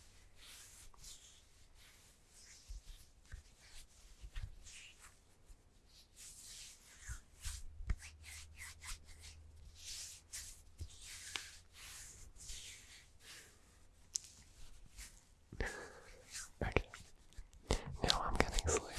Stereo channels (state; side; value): identical; both; correlation 1.00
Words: Okay. Now I'm getting